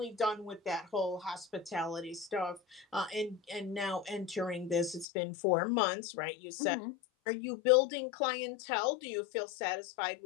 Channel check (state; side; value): drops out; right; at 5.1 s